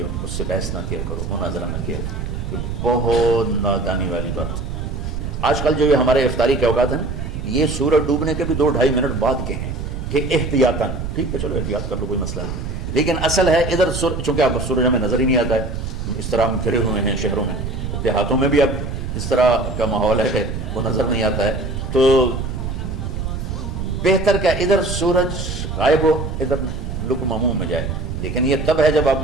اس سے بحث نہ کیا کرو، مناظرہ نہ کیا کرو، یہ بہت نادانی والی بات۔ آج کل جو یہ ہمارے افطاری کے اوقات ہیں، یہ سورج ڈوبنے کے بھی 2-2.5 منٹ بعد کے ہیں کہ احتیاطاً، ٹھیک ہے چلو احتیاط کر لو، کوئی مسئلہ نہیں، لیکن اصل ہے ادھر چونکہ اب سورج ہمیں نظر ہی نہیں آتا ہے، اس طرح ہم گھرے ہوئے ہیں شہروں میں، دیہاتوں میں بھی اب اس طرح کا ماحول ہے کہ وہ نظر نہیں آتا ہے، تو بہتر کہ ادھر سورج غائب ہو، ادھر لقمہ منہ میں جائے، لیکن یہ تب ہے جب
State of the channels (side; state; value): right; noise; rumble, 5 dB below the sound